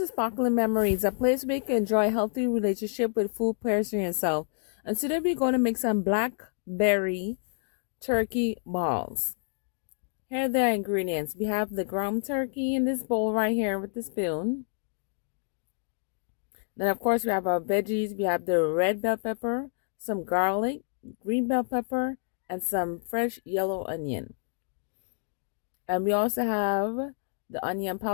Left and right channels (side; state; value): right; silent; digital silence